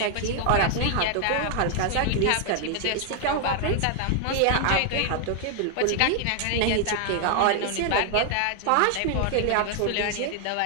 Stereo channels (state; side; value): different; both; correlation 0.00